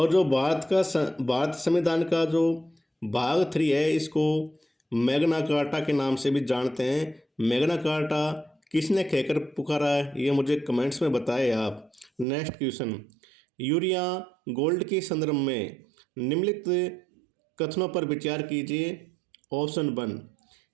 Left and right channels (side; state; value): left; drops out; at 12.2 s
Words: जो भारत संविधान का जो भाग 3 है इसको मैग्ना कार्टा के नाम से भी जानते हैं। मैग्ना कार्टा किसने कहकर पुकारा है ये मुझे कमेंट्स में बताएं आप। Next question. यूरिया गोल्ड के संदर्भ में निम्नलिखित कथनों पर विचार कीजिए। ऑप्शन 1